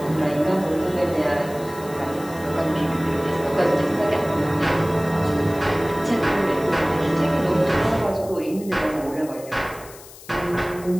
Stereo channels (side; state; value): left; noise; hiss, 19 dB below the sound